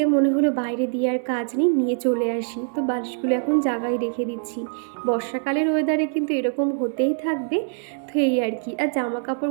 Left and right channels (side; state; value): left; silent; 63 dB below the other